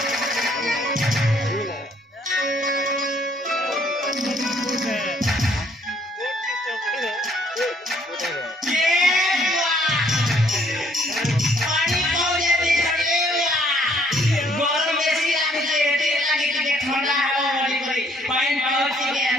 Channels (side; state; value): both; normal; correlation 0.64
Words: বেশি লাগছে এতে লাগে থেকে ঠান্ডা হাওয়া বলি করি পাইন পাওয়া থেকে